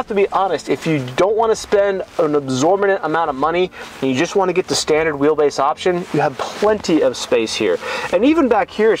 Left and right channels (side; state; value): both; identical; correlation 1.00